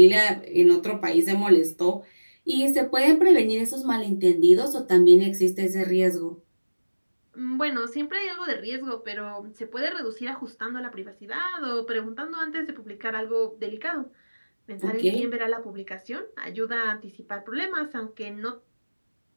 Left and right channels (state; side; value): inverted; both; correlation -1.00